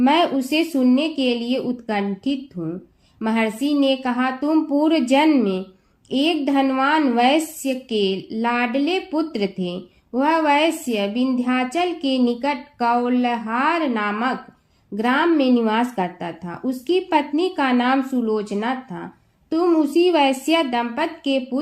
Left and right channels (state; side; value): identical; both; correlation 1.00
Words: उसे सुनने के लिए उत्कंठित हूँ। महर्षि ने कहा, तुम पूर्व जन्म में एक धनवान वैश्य के लाडले पुत्र थे। वह वैश्य विंध्याचल के निकट कौलहार नामक ग्राम में निवास करता था। उसकी पत्नी का नाम सुलोचना था। तुम उसी वैश्य दंपत के